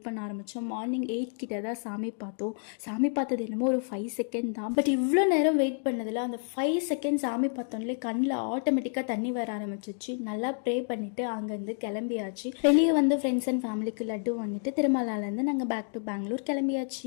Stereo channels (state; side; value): silent; right; 58 dB below the other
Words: பண்ண ஆரம்பித்தோம். மார்னிங் 8 கிட்ட தான் சாமி பார்த்தோம். சாமி பார்த்தது என்னமோ ஒரு 5 செகண்ட் தான். பட் இவ்வளோ நேரம் வெயிட் பண்ணதில் அந்த 5 செகண்ட் சாமி பார்த்தோன்னே கண்ணில் ஆட்டோமேட்டிக்காக தண்ணி வர ஆரம்பிச்சிச்சு. நல்லா ப்ரே பண்ணிவிட்டு அங்கேருந்து கிளம்பியாச்சு. வெளியே வந்து ஃப்ரெண்ட்ஸ் அண்ட் ஃபேமிலிக்கு லட்டு வாங்கிட்டு திருமலாலேருந்து நாங்கள் பேக் டு பெங்களூர்